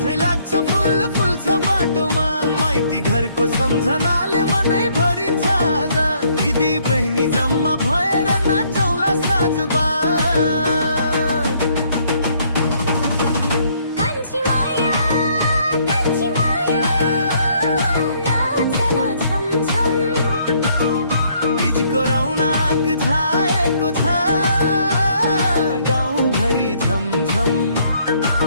चाहिँ लाग्छ फुल फुल्छ बाटोमा माइती घरको सम्झनाले मनै भरिन्छ आज दिदी बहिनी जम्मा भएर नाचौला साँझमा छाएको छ गाउँभरि झमझम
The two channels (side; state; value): both; inverted; correlation -0.67